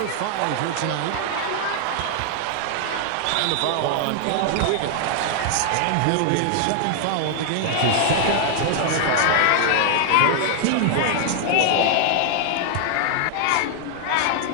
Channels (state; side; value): different; both; correlation 0.00